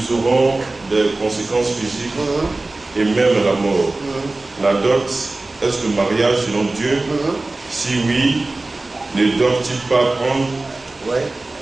auront des conséquences physiques et même la mort. La dot, est-ce le mariage selon Dieu? Si oui, ne doivent-ils pas prendre? Oui,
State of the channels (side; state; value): left; quieter; 3.1 dB